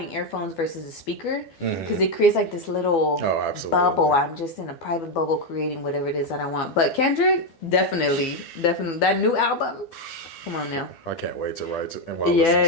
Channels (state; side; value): late; right; 12 ms